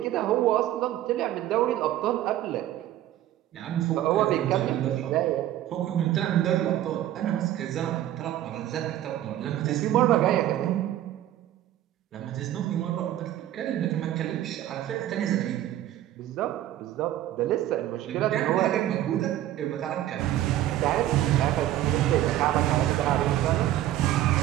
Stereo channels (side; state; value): left; quieter; 13.1 dB